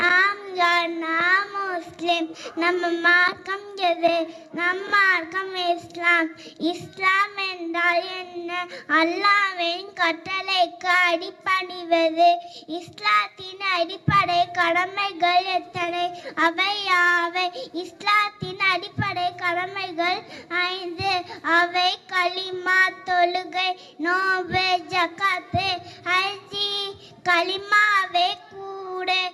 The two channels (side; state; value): both; identical; correlation 1.00